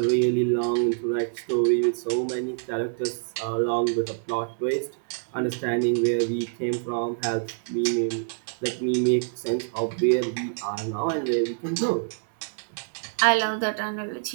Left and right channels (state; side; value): silent; left; 61 dB below the other